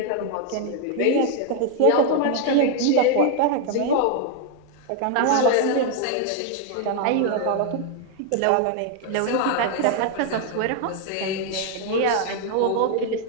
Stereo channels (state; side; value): different; both; correlation 0.00